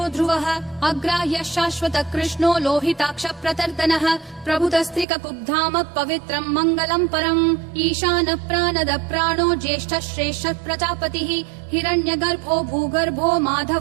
ध्रुवः अग्राह्यः शाश्वतः कृष्णो लोहिताक्ष प्रतर्दनः प्रभुतस्त्रिककुब्धाम पवित्रं मङ्गलं परम् ईशानः प्राणदः प्राणो ज्येष्ठः श्रेष्ठः प्रजापतिः हिरण्यगर्भो भूगर्भो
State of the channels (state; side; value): drops out; left; at 5.1 s